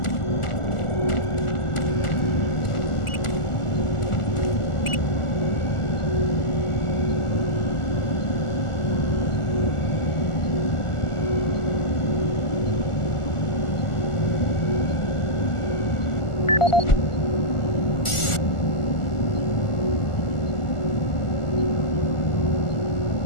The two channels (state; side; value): late; right; 1.4 ms